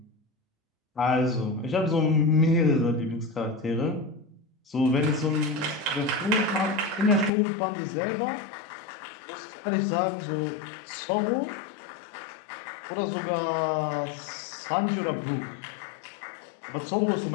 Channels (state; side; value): drops out; right; at 7.3 s